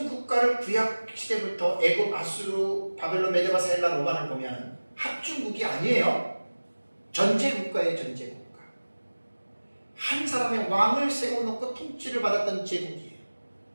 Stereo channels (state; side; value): inverted; both; correlation -1.00